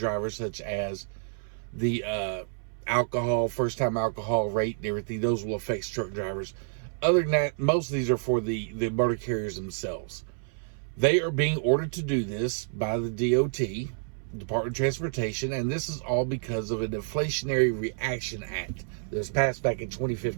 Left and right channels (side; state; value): left; silent; 59 dB below the other